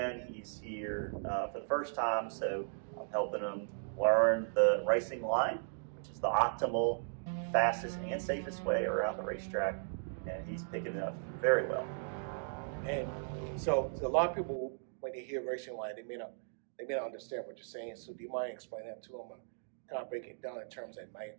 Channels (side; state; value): left; silent; digital silence